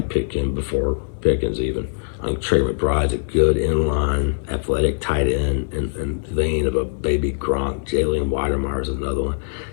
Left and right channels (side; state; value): right; silent; digital silence